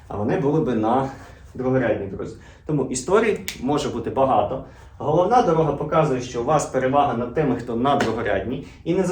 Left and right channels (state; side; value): identical; both; correlation 1.00